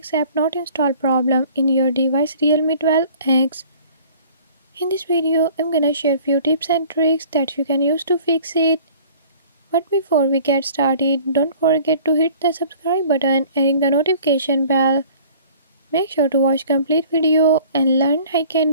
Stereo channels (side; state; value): both; inverted; correlation -0.49